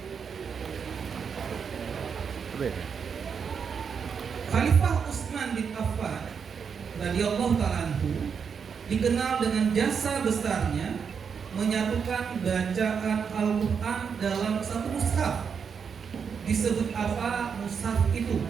Khalifah Utsman bin Affan radhiyallahu ta'ala anhu dikenal dengan jasa besarnya menyatukan bacaan Al-Quran dalam satu mushaf. Disebut apa mushaf itu?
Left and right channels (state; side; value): quieter; left; 6.5 dB